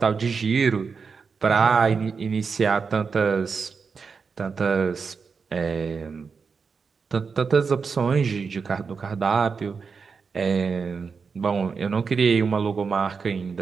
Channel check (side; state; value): left; quieter; 5.4 dB